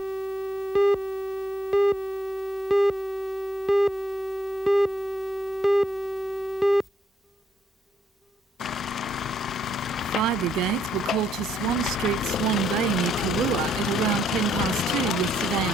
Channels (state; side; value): normal; both; correlation 0.72